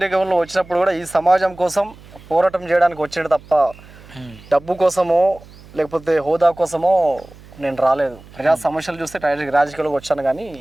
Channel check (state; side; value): noise; right; hum, 22 dB below the sound